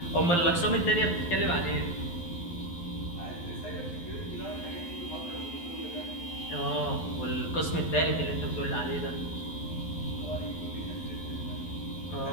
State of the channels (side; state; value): right; late; 12 ms